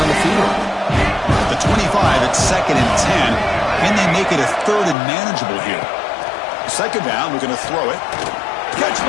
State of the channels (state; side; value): drops out; right; at 5.0 s